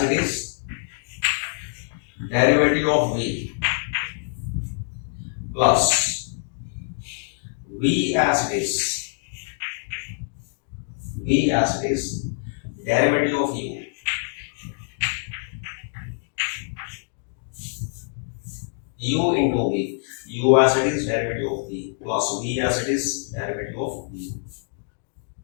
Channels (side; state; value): right; silent; 58 dB below the other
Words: it is derivative of v plus v as it is, v as it is derivative of u, u into v, u as it is derivative of v plus v as it is derivative of v.